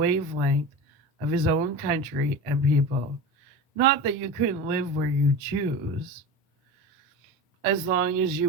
of his own country and people. Not that you couldn't live where you choose, as long as you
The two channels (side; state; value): both; normal; correlation 0.29